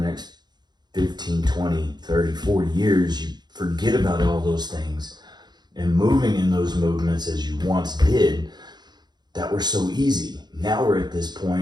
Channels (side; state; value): left; late; 0.21 ms